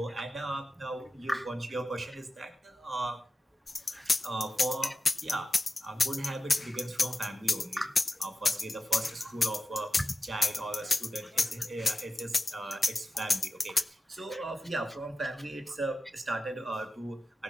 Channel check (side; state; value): both; normal; correlation 0.93